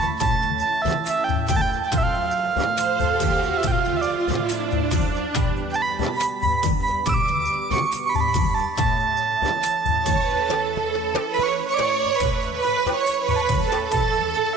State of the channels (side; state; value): both; normal; correlation 0.58